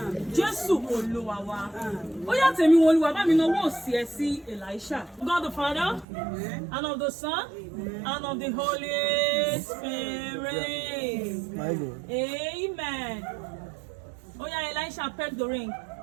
Jésù Olúwa wa. Ó yá Temiwunoluwa bá mi náwó òsì ẹ sí Elisha. God the Father, and of the Son, and of the Holy Spirit. Amen. Oh yeah, Elisha, peck the ring.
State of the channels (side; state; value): left; drops out; at 6.1 s